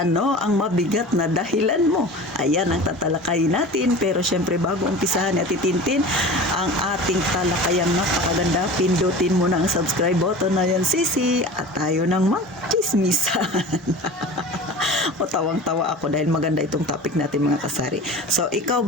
ang mabigat na dahilan mo? Ayan ang tatalakayin natin, pero syempre bago umpisahan at itintin ang ating talakayang napakaganda, pindutin mo na ang subscribe button na yan, sisi, at tayo nang magchismisan. O tawang-tawa ako dahil maganda itong topic natin, mga kasari. So, ikaw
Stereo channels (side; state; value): both; normal; correlation 0.36